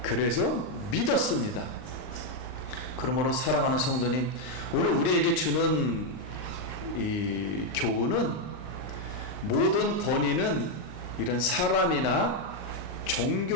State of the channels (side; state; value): right; late; 39 ms